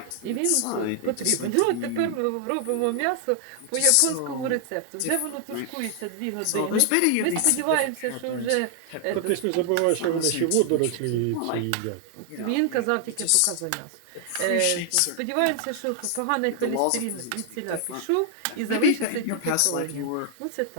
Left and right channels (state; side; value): different; both; correlation 0.00